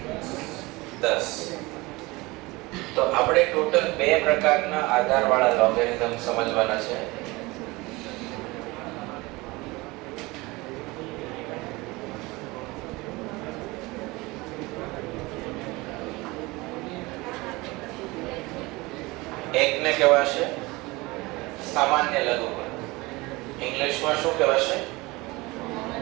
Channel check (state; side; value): quieter; left; 22.6 dB